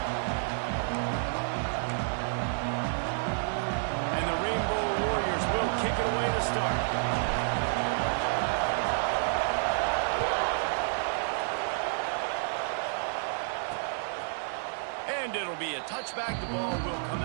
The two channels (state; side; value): silent; left; digital silence